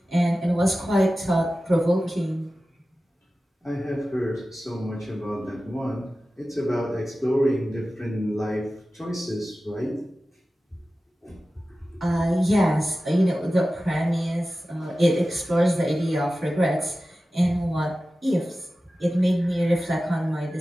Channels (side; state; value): both; normal; correlation 0.95